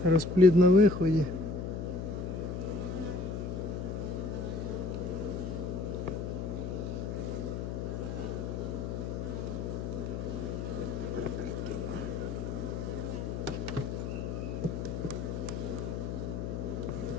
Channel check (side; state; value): left; noise; hum, 4 dB below the sound